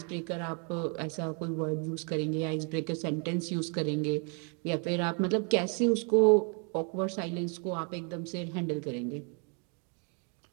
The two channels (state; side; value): quieter; left; 37.6 dB